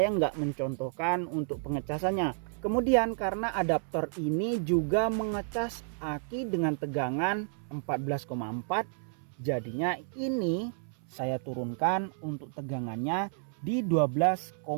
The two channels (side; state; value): left; silent; 57 dB below the other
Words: nggak mencontohkan untuk pengecasannya, Kemudian karena adaptor ini juga mengecas aki dengan tegangan 14,4, jadinya ini saya turunkan untuk tegangannya di 12,6